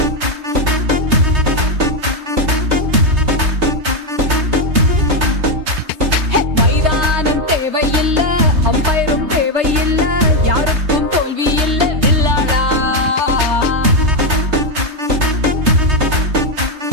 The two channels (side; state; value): left; late; 3.2 ms